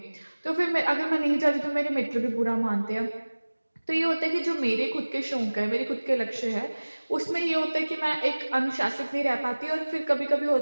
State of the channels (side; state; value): both; inverted; correlation -1.00